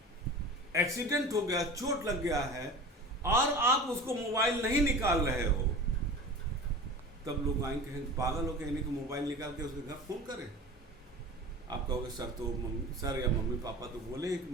एक्सीडेंट हो गया, चोट लग गया है, और आप उसको मोबाइल नहीं निकाल रहे हो, तब लोग आएंगे कहेंगे पागल हो क्या, इन्हें को मोबाइल निकाल के उसके घर फोन करें। आप कहोगे सर तो सर या मम्मी पापा तो बोले कि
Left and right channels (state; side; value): normal; both; correlation 0.35